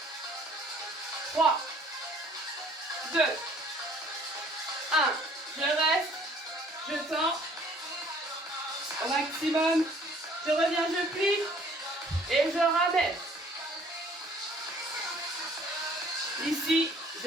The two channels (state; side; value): normal; both; correlation 0.56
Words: 3, 2, 1. Je reste. Je tends. Au maximum. Je reviens, je plie. Et je ramène. Ici,